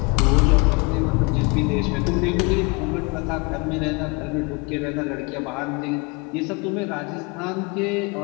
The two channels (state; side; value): quieter; right; 29.5 dB